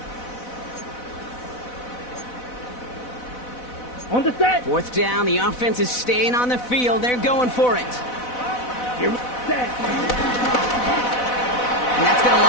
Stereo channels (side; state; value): right; late; 4.0 ms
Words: On the set. 4th down, the offense is staying on the field. They're going for it. Here we set. And that's going to